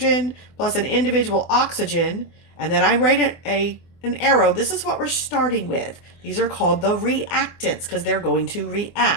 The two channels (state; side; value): late; right; 24 ms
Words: plus an individual oxygen, and then I write an arrow, this is what we're starting with. These are called the reactants because they're going to